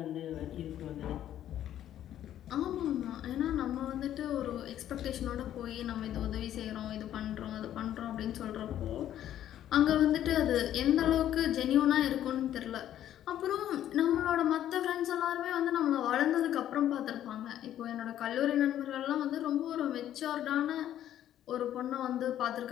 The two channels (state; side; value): quieter; right; 11.5 dB